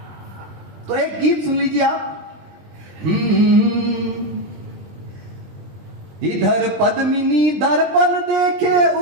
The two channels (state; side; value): late; left; 20 ms